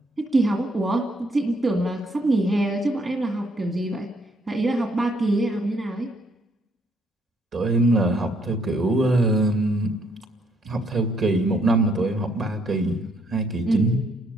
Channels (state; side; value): normal; both; correlation 0.70